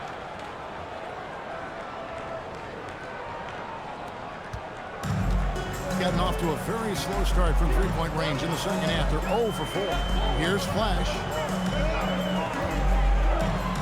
Gotten off to a very slow start from three-point range in the second half. They're 0 for 4. Here's Flash.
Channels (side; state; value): both; identical; correlation 1.00